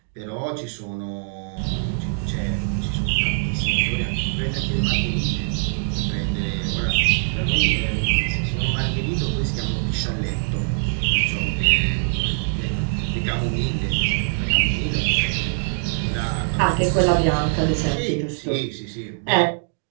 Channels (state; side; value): silent; left; digital silence